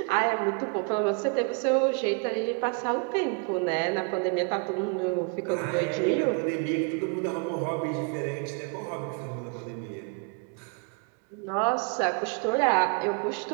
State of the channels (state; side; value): quieter; left; 35.3 dB